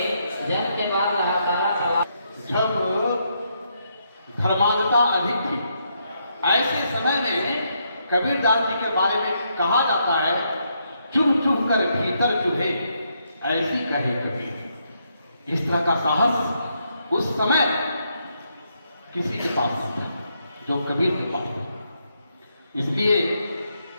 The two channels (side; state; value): both; inverted; correlation -0.77